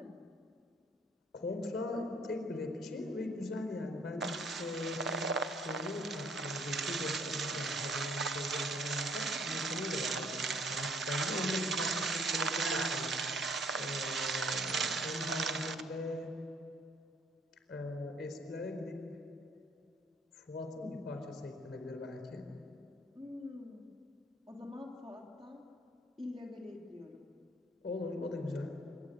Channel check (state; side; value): normal; both; correlation 0.61